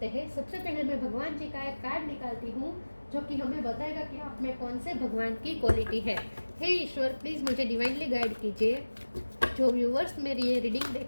हैं। सबसे पहले मैं भगवान जी का एक कार्ड निकालती हूँ जो कि हमें बताएगा कि आप में कौन से भगवान की क्वालिटी है। हे ईश्वर, प्लीज़ मुझे डिवाइनली गाइड कीजिए। जो व्यूअर्स मेरी ये रीडिंग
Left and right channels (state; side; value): inverted; both; correlation -1.00